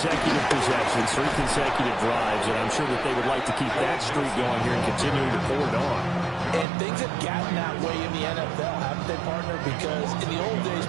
possessions, 3 consecutive drives, and I'm sure that they would like to keep that streak going here and continuing to pull it on. And things have gotten that way in the NFL, haven't they, partner? Because in the old days,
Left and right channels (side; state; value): left; drops out; at 6.7 s